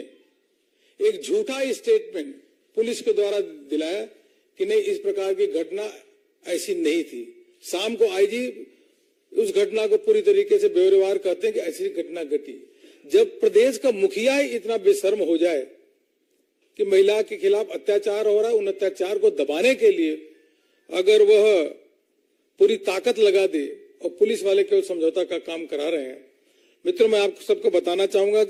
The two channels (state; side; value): identical; both; correlation 1.00